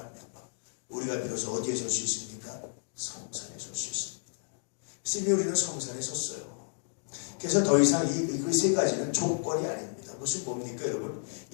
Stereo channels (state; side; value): silent; right; digital silence